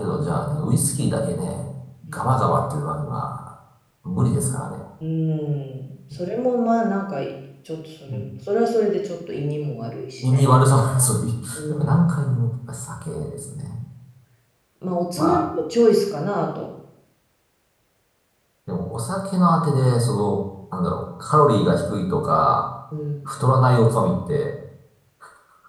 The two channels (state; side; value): identical; both; correlation 1.00